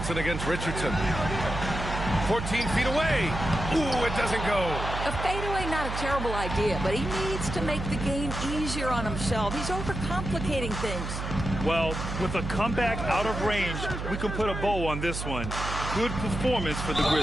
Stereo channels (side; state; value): right; noise; hum, 5 dB below the sound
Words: against Richardson. 14 feet away. Ooh, it doesn't go. A fadeaway, not a terrible idea, but he needs to make the game easier on himself. He's overcomplicating things. Well, with a comeback out of range, we can put a bow on this one. Good performance for the